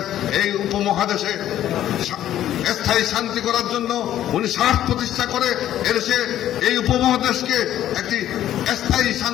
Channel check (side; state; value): right; quieter; 12.0 dB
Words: এই উপমহাদেশে স্থায়ী শান্তি করার জন্য উনি সাহস প্রতিষ্ঠা করে এদেশে এই উপমহাদেশকে একটি স্থায়ী